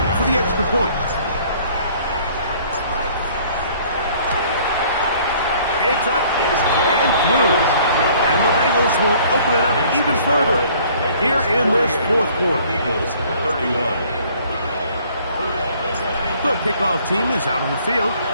Gets up and through. And the Bengals will open it up even further here in this fourth quarter. Eagles 31. The kickoff team is out on the field,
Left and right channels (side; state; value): both; inverted; correlation -0.56